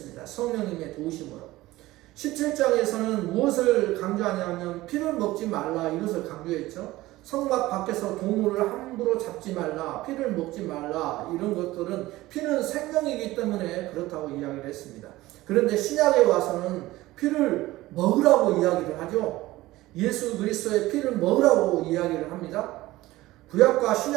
성령님의 도우심으로. 17장에서는 무엇을 강조하냐면 피를 먹지 말라, 이것을 강조했죠. 성막 밖에서 동물을 함부로 잡지 말라, 피를 먹지 말라, 이런 것들은 피는 생명이기 때문에 그렇다고 이야기를 했습니다. 그런데 신약에 와서는 피를 먹으라고 이야기를 하죠. 예수 그리스도의 피를 먹으라고 이야기를 합니다. 구약과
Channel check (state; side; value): quieter; left; 17.7 dB